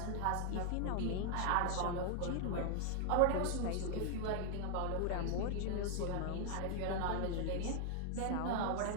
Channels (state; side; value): different; both; correlation 0.00